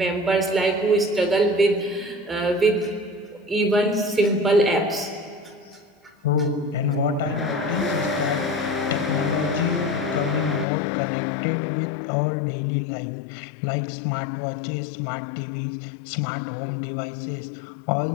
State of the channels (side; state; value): right; drops out; at 10.7 s